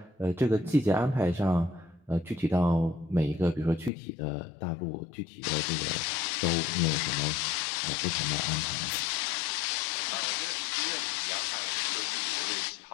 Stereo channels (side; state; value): right; drops out; at 3.9 s